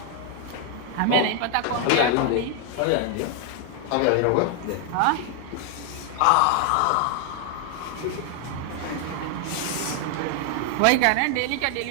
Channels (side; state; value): both; different; correlation 0.00